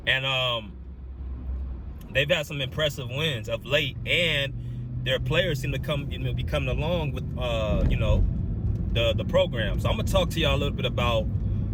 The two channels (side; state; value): both; identical; correlation 1.00